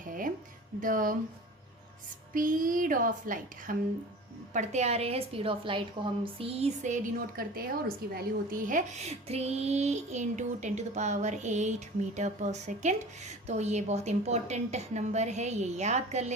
द स्पीड ऑफ लाइट, हम पढ़ते आ रहे हैं स्पीड ऑफ लाइट को हम c से डिनोट करते हैं और उसकी वैल्यू होती है 3 × 10⁸ मीटर पर सेकेंड। तो ये बहुत इंपॉर्टेंट नंबर है, ये याद कर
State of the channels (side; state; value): both; normal; correlation 0.39